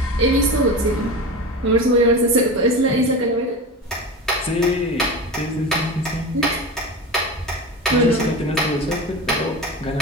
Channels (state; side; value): normal; both; correlation 0.27